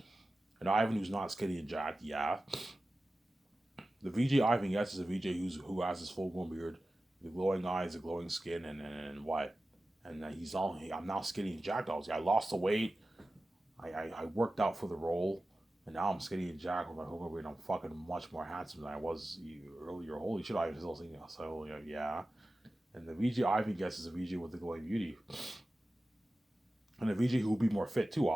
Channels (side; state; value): both; normal; correlation 0.95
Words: and Ivan who's not skinny and jacked, yeah. The VJ Ivan gets is a VJ who has his full grown beard, the glowing eyes, the glowing skin, and what? And I'm now skinny and jacked. I lost the weight. I worked out for the role, and now I'm skinny and jacked with my whole grown beard. I'm fucking much more handsome than I was earlier. Holy shit, I was still thinking. So yeah. And the VJ Ivan gets is a VJ with the glowing beauty. And the VJ who will be more fit too,